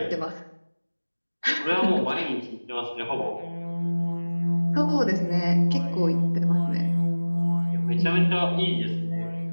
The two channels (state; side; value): inverted; both; correlation -1.00